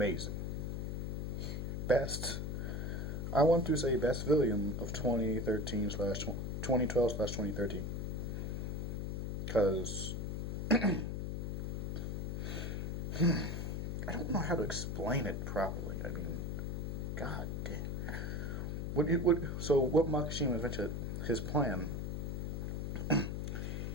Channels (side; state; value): left; noise; hum, 2 dB below the sound